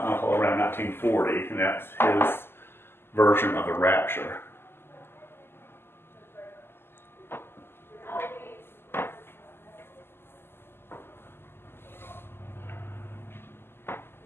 uncle around 1940, and that's his version of the rapture.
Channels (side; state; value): right; late; 0.11 ms